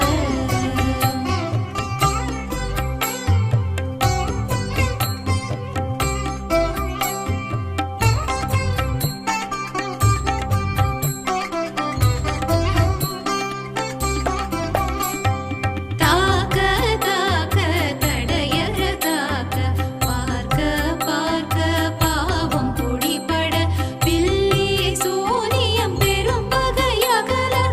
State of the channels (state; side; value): identical; both; correlation 1.00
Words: தாக்க தாக்க தடையற தாக்க பார்க்க பார்க்க பாவம் பொடிபட பில்லி சூனியம் பெரும் பகையகல